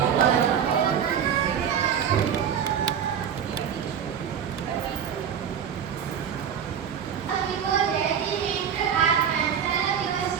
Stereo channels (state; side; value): quieter; left; 8.2 dB